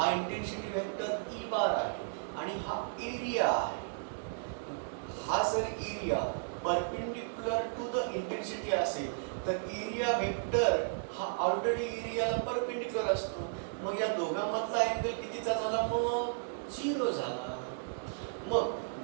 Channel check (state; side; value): silent; left; digital silence